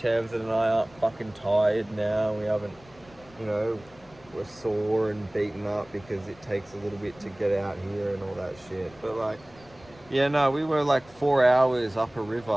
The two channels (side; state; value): left; noise; rumble, 25 dB below the sound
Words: and I aren't fucking tired now. We haven't, you know, we're sore and beaten up because it takes a little bit to get out here and all that shit. But like, yeah, no, we were like 4 hours up a